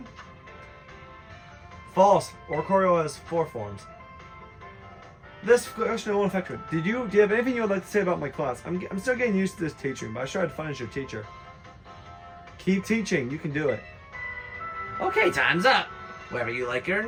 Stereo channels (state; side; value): identical; both; correlation 1.00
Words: False. Oricorio has 4 forms. This question won't affect you. Do you have anything you would like to say about my class? I'm still getting used to this teaching, but I tried to find your teacher. Keep teaching. You can do it. Okay, time's up. Whether you like it or